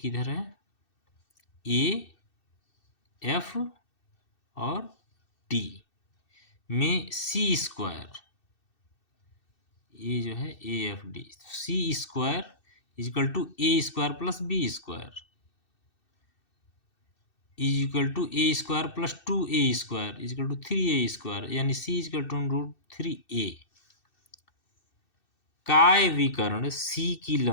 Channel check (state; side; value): late; right; 2.6 ms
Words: किधर है, ए एफ और डी में सी स्क्वायर, ये जो है A F D, C square is equal to A square plus B square is equal to A square plus 2a square is equal to 3a square, यानी सी इजकल टू √3a। काय विकर्ण सी की